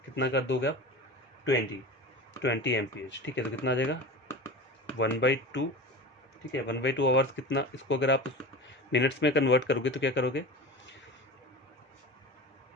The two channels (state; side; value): normal; both; correlation 0.31